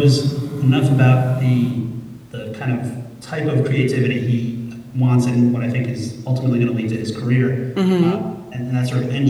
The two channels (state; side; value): identical; both; correlation 1.00